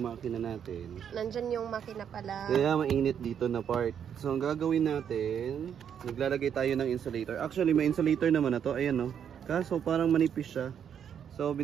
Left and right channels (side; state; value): left; quieter; 8.4 dB